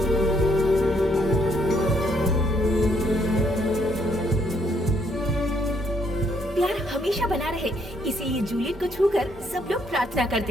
प्यार हमेशा बना रहे, इसीलिए जूलियट को छूकर सब लोग प्रार्थना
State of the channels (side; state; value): both; normal; correlation 0.71